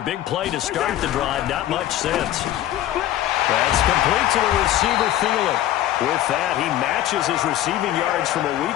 big play to start the drive. Not much sense. That's complete to the receiver, Thielen. With that, he matches his receiving yards from a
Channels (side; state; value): right; quieter; 13.3 dB